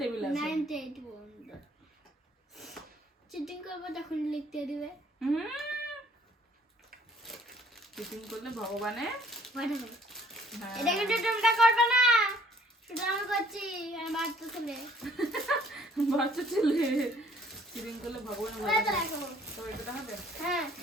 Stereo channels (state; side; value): normal; both; correlation 0.59